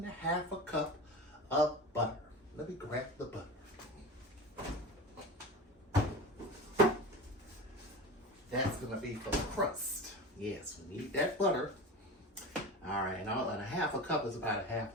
cup of butter. Let me grab the butter. That's gonna be for the crust. Yes, we need that butter. All right, and 1/2 cup is about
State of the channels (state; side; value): normal; both; correlation 0.29